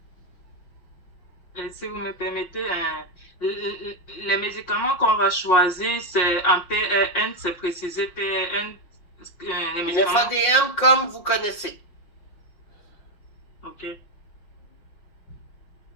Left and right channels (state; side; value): late; right; 5.5 ms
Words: Si vous me permettez, les médicaments qu'on va choisir, c'est en PRN, c'est précisé PRN. Les Une médicaments... FADM comme vous connaissez. OK.